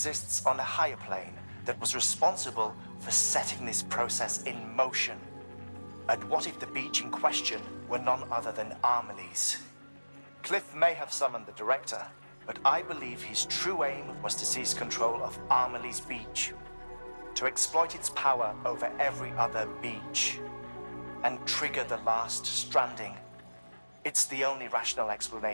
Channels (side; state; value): both; inverted; correlation -1.00